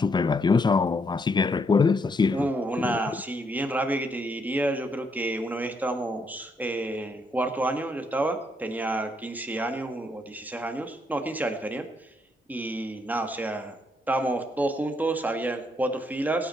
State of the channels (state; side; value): normal; both; correlation 0.74